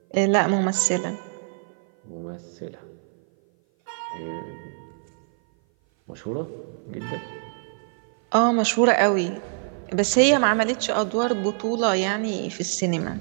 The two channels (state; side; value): silent; left; 57 dB below the other